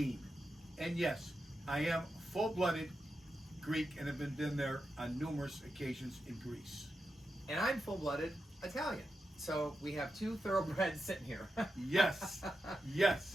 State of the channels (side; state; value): both; normal; correlation 0.88